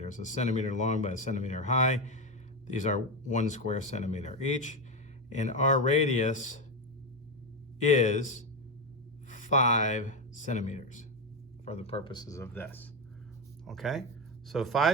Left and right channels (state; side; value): normal; both; correlation 0.12